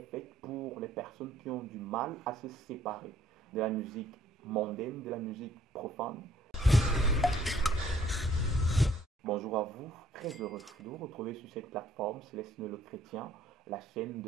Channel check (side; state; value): both; normal; correlation 0.61